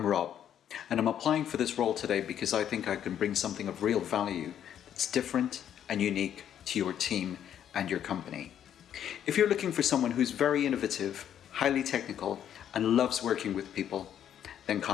I'm Rob, and I'm applying for this role today because I think I can bring something of real value that's different and unique to your team and your company. If you're looking for someone who's very innovative, highly technical, and loves working with people, then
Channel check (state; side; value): quieter; right; 9.8 dB